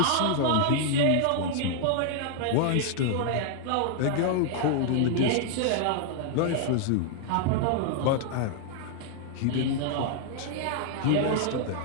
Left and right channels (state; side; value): different; both; correlation 0.00